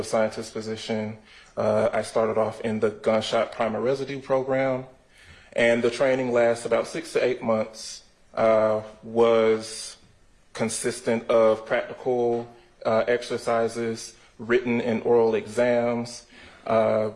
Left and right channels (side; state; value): both; identical; correlation 1.00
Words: scientist position, I started off in the Gunshot Primer Residue program. And the training lasts about 6 to 8 months, was consistent of practical exercises, written and oral exams,